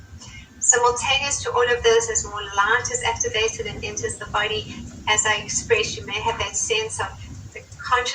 Simultaneous to all of this, as more light is activated and enters the body, as I expressed, you may have that sense of the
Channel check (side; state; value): both; identical; correlation 1.00